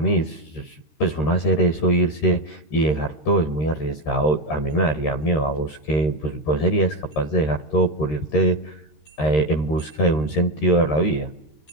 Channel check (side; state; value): right; late; 13 ms